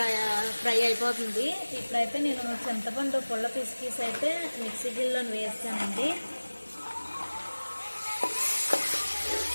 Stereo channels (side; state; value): both; inverted; correlation -1.00